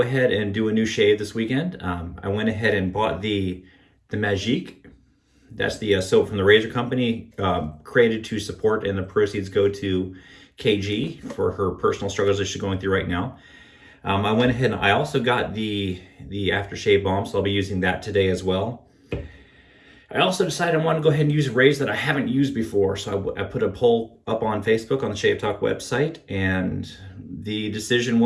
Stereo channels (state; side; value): identical; both; correlation 1.00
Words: ahead and do a new shave this weekend. I went ahead and bought the Magique. That's the soap from the razor company, created to support, and the proceeds go to KG for her personal struggles that she's going through right now. I went ahead and I also got the aftershave balm, so I'll be using that today as well. I also decided I want to go ahead and use a razor that I haven't used before. So I put a poll up on Facebook on the Shave Talk website, and the decision